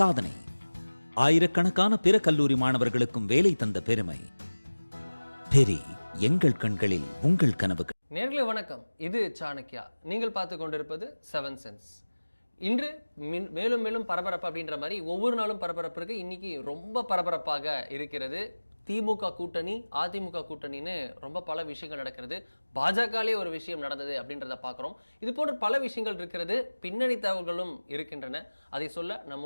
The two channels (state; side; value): inverted; both; correlation -1.00